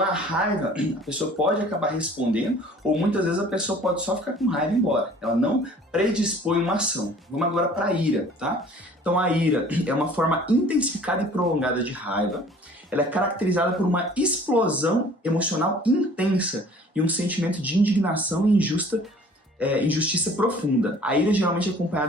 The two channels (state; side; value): normal; both; correlation 0.51